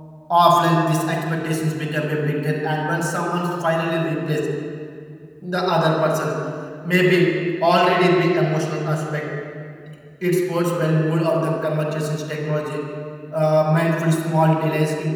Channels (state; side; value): identical; both; correlation 1.00